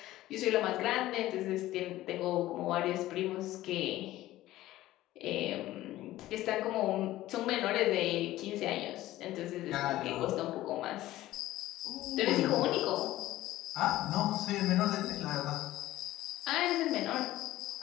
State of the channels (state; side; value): quieter; right; 15.6 dB